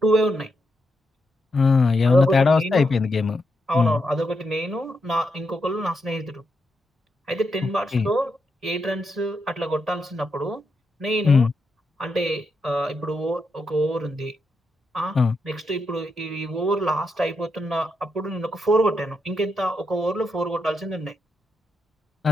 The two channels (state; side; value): normal; both; correlation 0.83